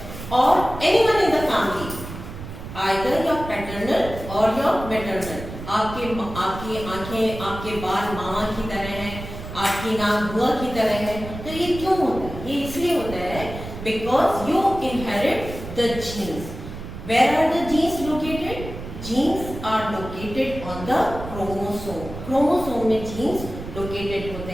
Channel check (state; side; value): noise; right; rumble, 10 dB below the sound